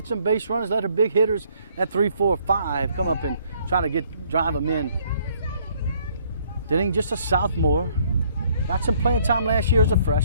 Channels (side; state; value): both; inverted; correlation -0.64